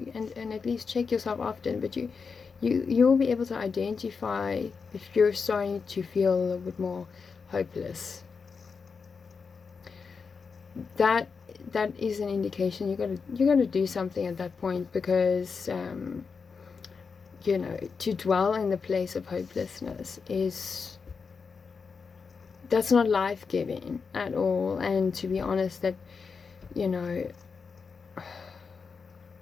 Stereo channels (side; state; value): right; quieter; 5.3 dB